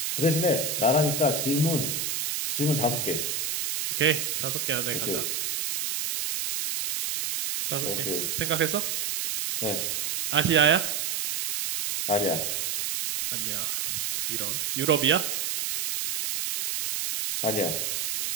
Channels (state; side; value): noise; right; hiss, 1 dB below the sound